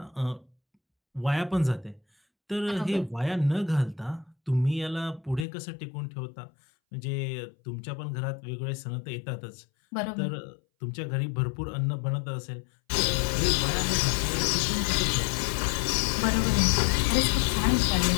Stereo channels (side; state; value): right; drops out; at 5.5 s